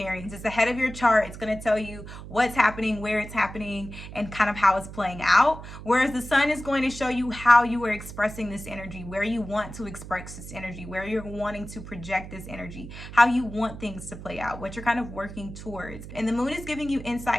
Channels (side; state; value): right; noise; hum, 12 dB below the sound